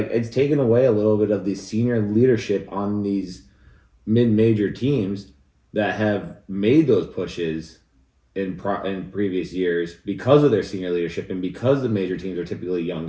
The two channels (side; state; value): both; identical; correlation 1.00